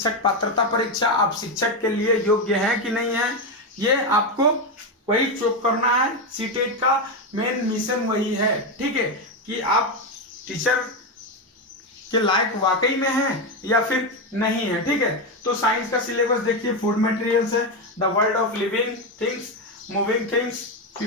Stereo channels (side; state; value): both; normal; correlation 0.10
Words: पात्रता परीक्षा। आप शिक्षक के लिए योग्य हैं कि नहीं है, ये आपको वही चेक करना है। सीटेट का मेन मिशन वही है, ठीक है, कि आप टीचर के लायक वाकई में हैं या फिर नहीं है, ठीक है। तो साइंस का सिलेबस देखिए, फूड मटेरियल्स है, the world of living things, moving things,